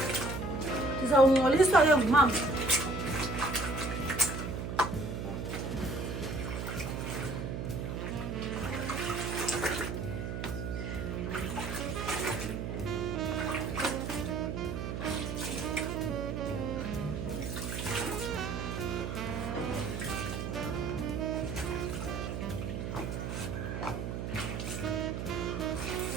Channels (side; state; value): right; noise; hum, 4 dB below the sound